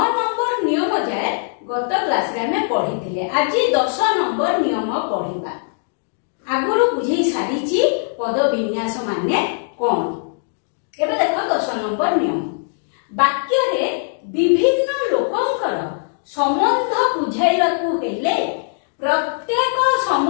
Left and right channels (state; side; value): silent; right; digital silence